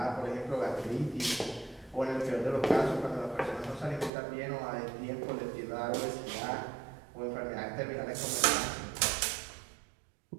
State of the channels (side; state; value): left; drops out; at 4.1 s